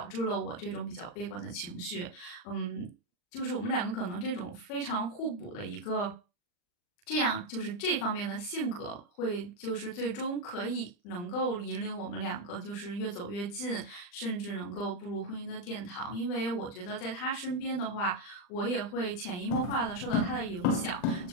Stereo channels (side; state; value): right; late; 40 ms